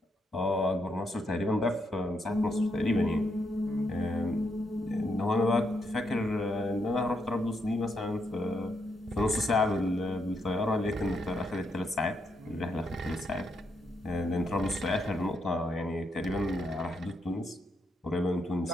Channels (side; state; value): both; normal; correlation 0.79